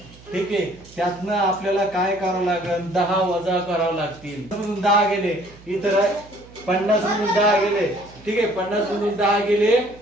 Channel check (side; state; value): right; noise; hum, 23 dB below the sound